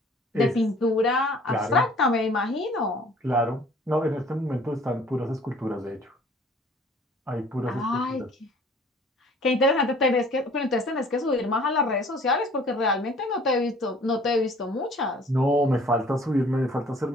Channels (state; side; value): normal; both; correlation 0.53